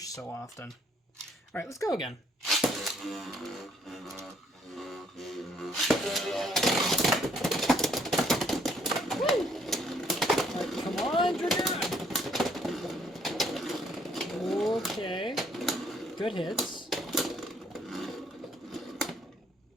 so often. Alright, let's go again. Woo! Right, come on, Dragoon! Okay. Good hits.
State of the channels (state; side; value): normal; both; correlation 0.66